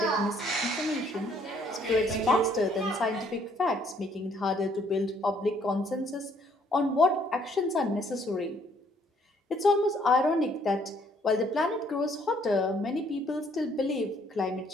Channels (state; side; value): normal; both; correlation 0.65